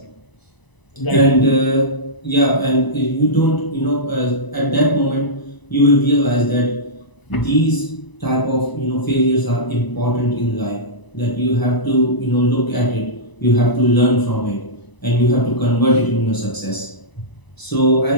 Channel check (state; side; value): late; right; 1.0 ms